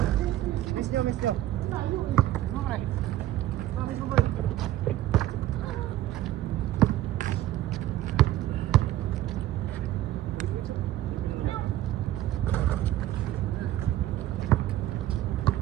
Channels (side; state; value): left; quieter; 14.0 dB